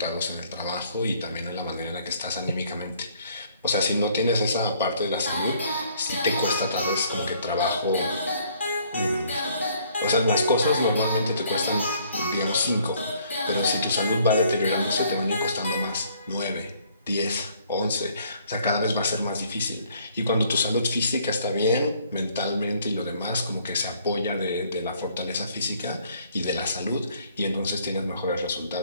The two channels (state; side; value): inverted; both; correlation -0.62